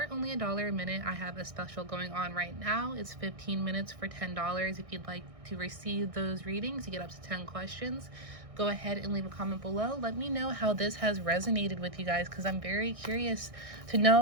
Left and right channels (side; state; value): left; late; 1.6 ms